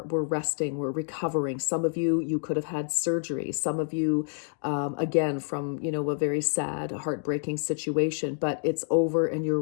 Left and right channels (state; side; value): silent; right; 59 dB below the other